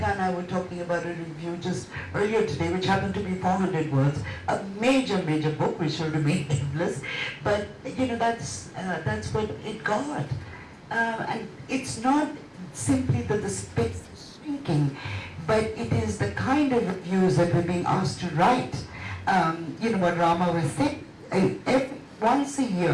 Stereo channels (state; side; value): identical; both; correlation 1.00